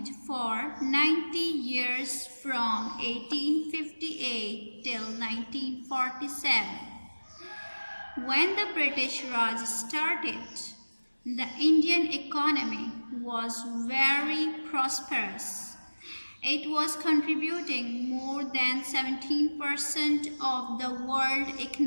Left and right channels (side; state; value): both; inverted; correlation -1.00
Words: for 90 years from 1858 till 1947. When the British Raj started, the Indian economy was very prosperous. It was contributing more than 17% of the world